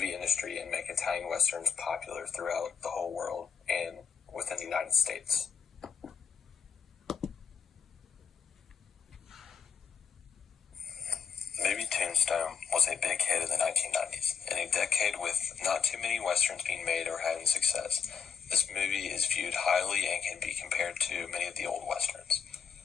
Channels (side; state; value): right; quieter; 6.7 dB